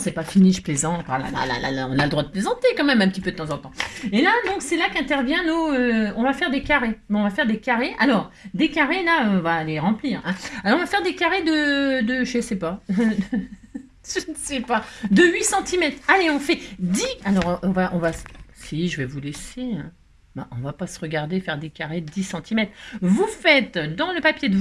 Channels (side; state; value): both; identical; correlation 1.00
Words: pas fini, je plaisante. Ah là, là, là, là, on a le droit de plaisanter quand même un petit peu de temps en temps. Et là, donc, c'est là qu'intervient nos... on va faire des carrés. Bon, on va faire des carrés. Alors, des carrés, là, on va les remplir, hein. Alors, on va faire des carrés je sais pas. Je ne sais pas. De 8 centimètres. Allez, on fait 10. Alors, on va... Si, je vais vous laisser, hein. Bah, on va pas se regarder faire des carrés de 10 centimètres. Vous faites dans le papier de